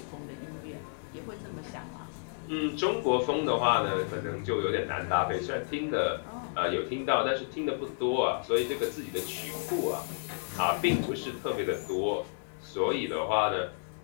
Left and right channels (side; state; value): right; silent; digital silence